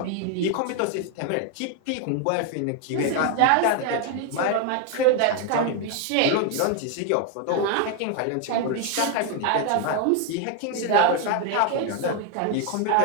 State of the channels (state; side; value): different; both; correlation 0.01